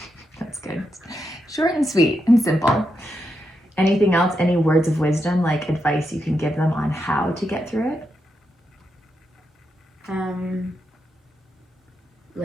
That's good. Short and sweet and simple. Anything else? Any words of wisdom, like advice you can give them on how to get through it?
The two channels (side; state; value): both; normal; correlation 0.84